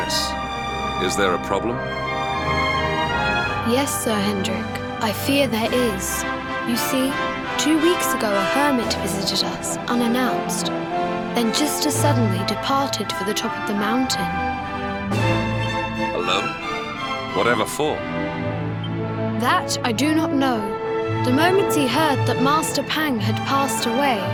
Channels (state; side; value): identical; both; correlation 1.00